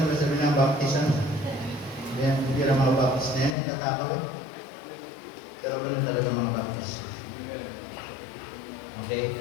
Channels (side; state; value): right; drops out; at 3.6 s